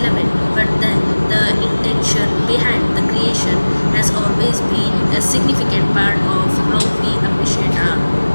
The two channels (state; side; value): inverted; both; correlation -1.00